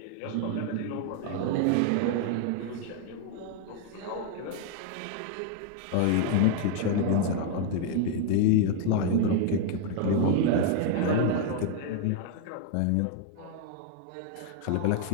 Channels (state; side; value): different; both; correlation 0.00